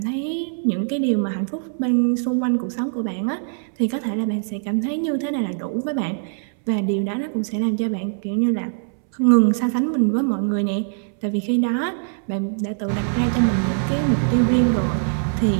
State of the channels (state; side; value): silent; left; 64 dB below the other